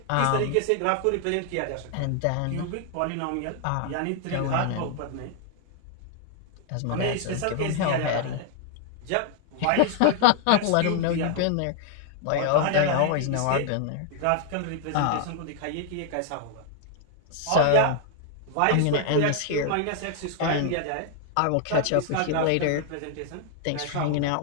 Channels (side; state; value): both; different; correlation 0.00